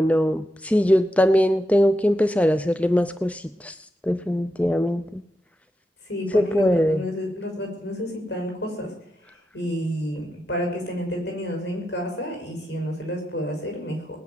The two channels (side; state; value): both; normal; correlation 0.86